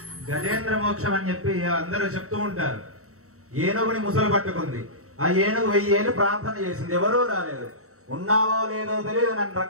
గజేంద్ర మోక్షం అని చెప్పి అందరూ చెప్తూ ఉంటారు. ఏనుగుని ముసలు పట్టుకుంది, ఆ ఏనుగు 1000 ఏళ్ళు ప్రార్థన చేసింది, ఎవరూ రాలేదు. ఉన్నావో లేదో తెలియదు, నన్ను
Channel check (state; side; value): late; left; 0.64 ms